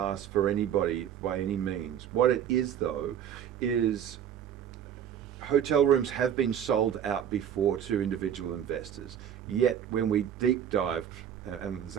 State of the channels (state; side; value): quieter; left; 9.4 dB